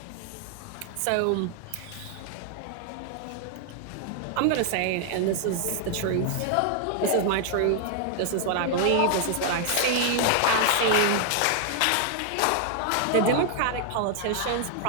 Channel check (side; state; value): both; different; correlation 0.00